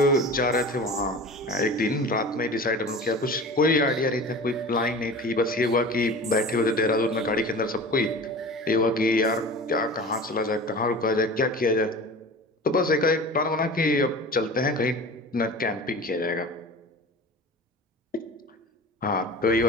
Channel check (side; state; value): both; normal; correlation 0.36